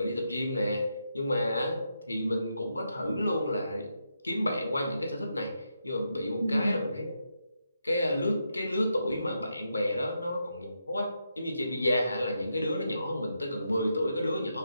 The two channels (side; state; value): both; inverted; correlation -0.83